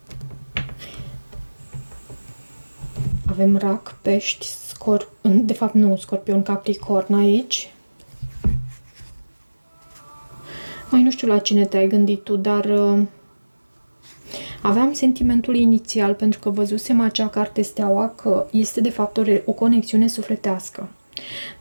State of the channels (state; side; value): inverted; both; correlation -1.00